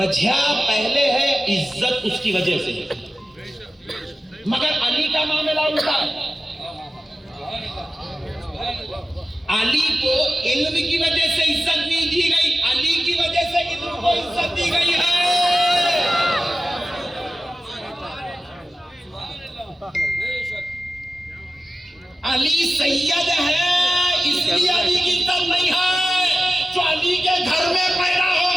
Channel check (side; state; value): both; normal; correlation 0.94